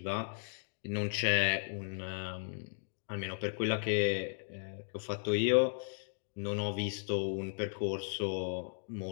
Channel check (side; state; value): right; silent; digital silence